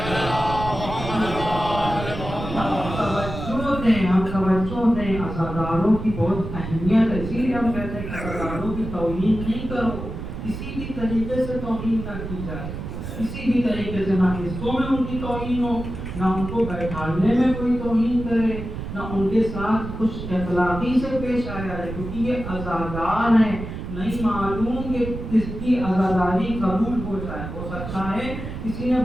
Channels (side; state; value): right; noise; rumble, 7 dB below the sound